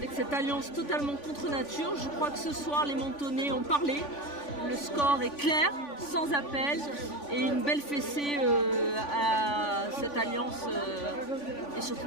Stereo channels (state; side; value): late; right; 3.5 ms